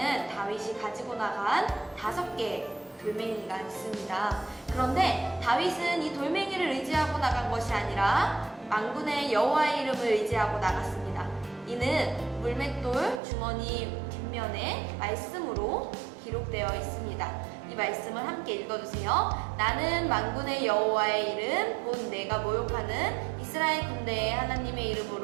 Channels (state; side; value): drops out; left; at 13.2 s